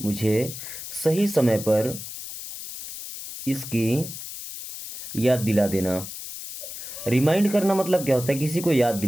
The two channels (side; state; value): left; noise; hiss, 10 dB below the sound